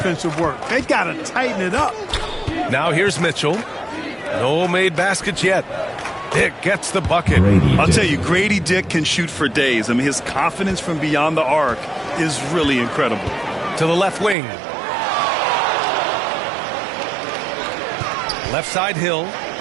work. They got to tighten it up. Now here's Mitchell. No made baskets yet. Dick gets the bucket. I'll tell you, Grady Dick can shoot for days. I mean, his confidence from beyond the arc is really incredible. To the left wing. Left side Hill.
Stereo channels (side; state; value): left; drops out; at 14.4 s